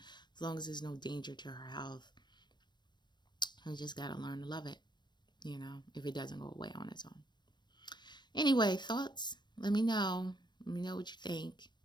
as long as there's no danger to her health, I just got to learn to love it, if it doesn't go away on its own. Anyway, thoughts? Let me know. Let me know what you think.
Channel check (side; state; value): right; late; 0.22 ms